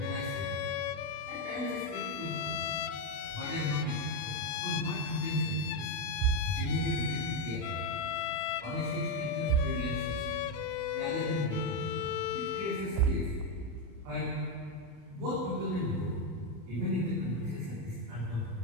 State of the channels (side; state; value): left; late; 29 ms